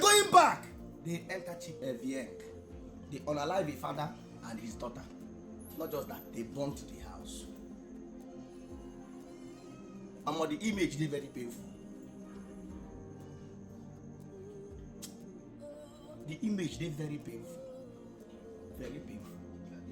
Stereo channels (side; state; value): both; identical; correlation 1.00